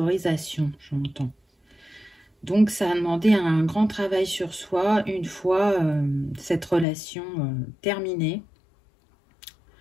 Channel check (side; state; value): right; drops out; at 6.9 s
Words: j'entends. Donc, ça a demandé un grand travail sur soi une fois cette relation terminée.